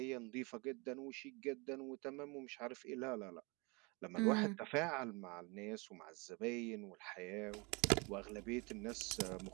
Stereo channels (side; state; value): left; quieter; 28.6 dB